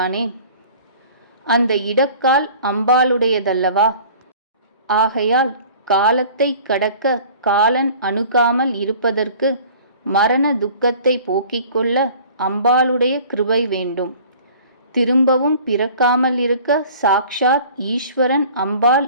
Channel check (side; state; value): both; inverted; correlation -0.47